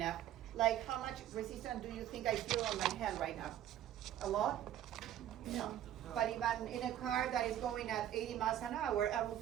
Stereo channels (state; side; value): quieter; left; 11.7 dB